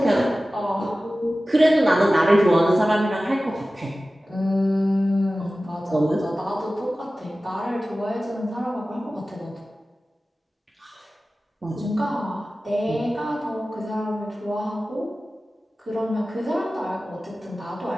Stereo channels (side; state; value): both; normal; correlation 0.96